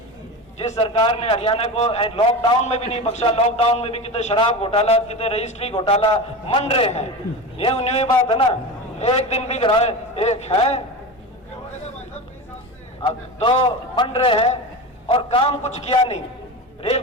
जिस सरकार ने हरियाणा को लॉकडाउन में भी नहीं बख्शा, लॉकडाउन में भी कितने शराब घोटाला, कितने रजिस्ट्री घोटाला मन रहे हैं। ये न्यू बात है ना, एक दिन भी कराए एक है, अब तो बन रहे हैं और काम कुछ किया नहीं। रेल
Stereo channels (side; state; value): both; normal; correlation 0.26